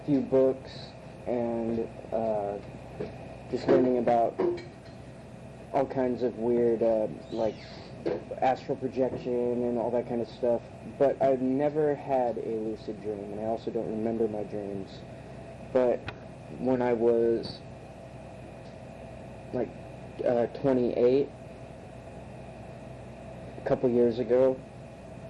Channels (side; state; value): both; identical; correlation 1.00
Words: few books and just learning about all kinds of weird, like astral projection and all that kind of stuff. But I've never had a lucid dream, and I also don't remember my dreams. But when I was like 28, a couple years ago,